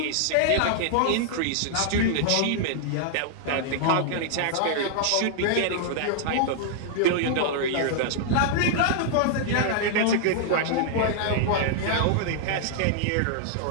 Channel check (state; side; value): different; both; correlation -0.01